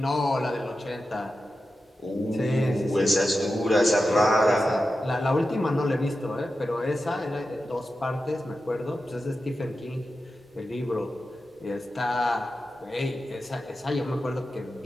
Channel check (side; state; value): both; normal; correlation 0.91